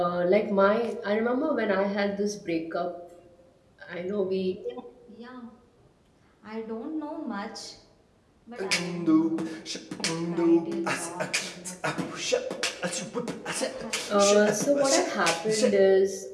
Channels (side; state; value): both; identical; correlation 1.00